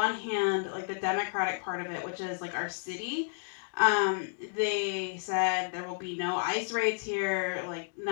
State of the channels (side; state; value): right; silent; digital silence